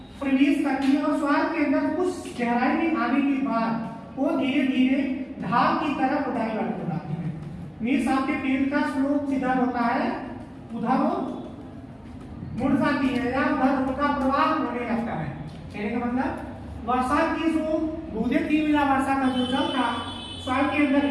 प्रवेश करती है और सॉइल के अंदर कुछ गहराई में आने के बाद वो धीरे धीरे ढाल की तरफ डाइवर्ट हो जाती है। मीन्स आपके पेड़ का स्लोप जिधर होता है उधर वो मुड़ जाती है या उधर उनका प्रवाह होने लगता है। कहने का मतलब वर्षा की जो बूंदें थी या वर्षा का जो जल था सॉइल के अंदर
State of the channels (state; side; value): identical; both; correlation 1.00